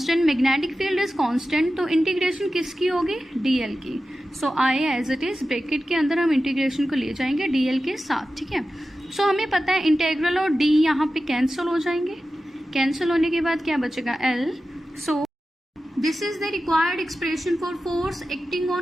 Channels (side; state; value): both; normal; correlation 0.93